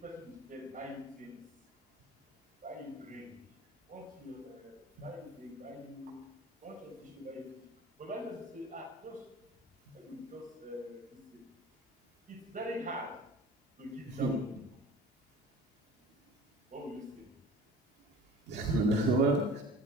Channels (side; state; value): both; normal; correlation 0.42